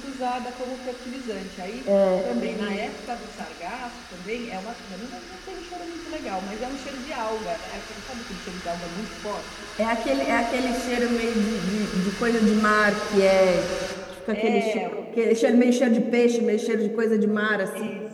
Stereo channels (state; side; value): identical; both; correlation 1.00